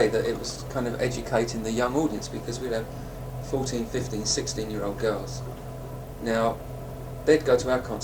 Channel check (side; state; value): both; identical; correlation 1.00